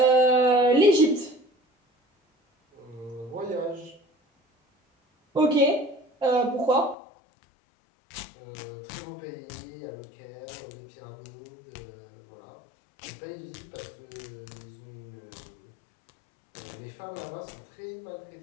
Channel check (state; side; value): drops out; right; at 7.0 s